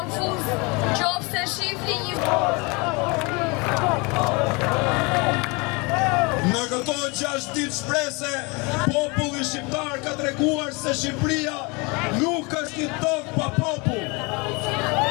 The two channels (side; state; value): right; quieter; 28.3 dB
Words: nëse shihni një. Në këto 6 ditë shprese, populli shqiptar ka treguar se Shqipëria nuk është një tokë pa popull.